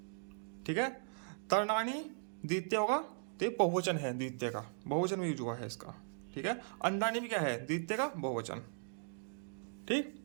ठीक है। तरणानी द्वितीय होगा, तो ये बहुवचन है, द्वितीय का बहुवचन में यूज हुआ है इसका, ठीक है। अंडानी भी क्या है, द्वितीय का बहुवचन, ठीक,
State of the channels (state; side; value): silent; left; digital silence